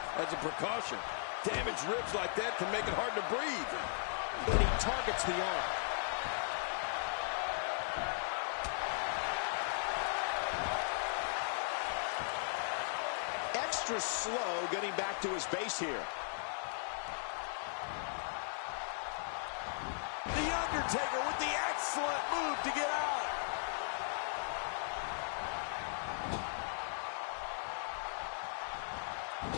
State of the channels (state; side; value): silent; right; 53 dB below the other